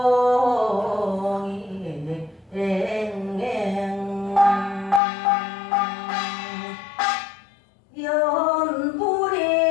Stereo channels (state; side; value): drops out; right; at 5.0 s